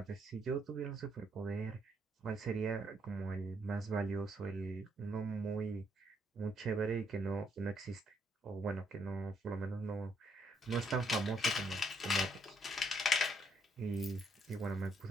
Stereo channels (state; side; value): normal; both; correlation 0.72